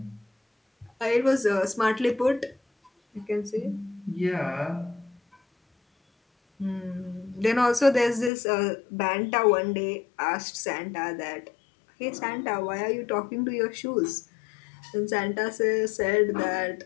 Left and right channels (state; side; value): drops out; right; at 8.3 s